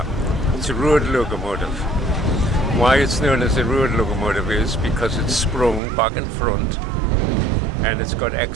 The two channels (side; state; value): left; drops out; at 5.8 s